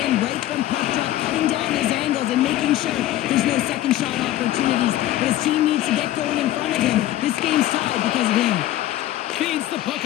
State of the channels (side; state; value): right; quieter; 14.2 dB